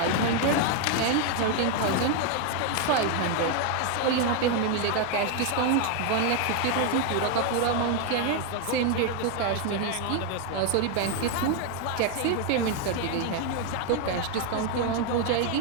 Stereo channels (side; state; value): both; different; correlation 0.01